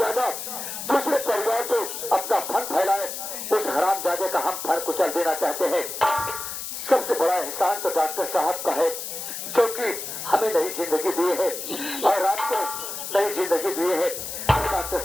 दूसरे परिवार को अपना फन फैलाए, उस हरामजादे का हम फन कुचल देना चाहते हैं। सबसे बड़ा एहसान तो डॉक्टर साहब का है, जो कि हमें नई जिंदगी दी है और आपको नई जिंदगी दी है। डॉक्टर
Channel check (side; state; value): left; noise; hiss, 7 dB below the sound